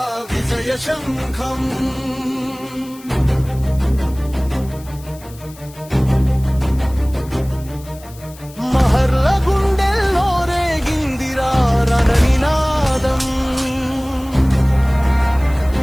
విజయ శంఖం. మహర్ల గుండెల్లో రేగిందిరా రణనినాదం.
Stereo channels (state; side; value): noise; left; hiss, 22 dB below the sound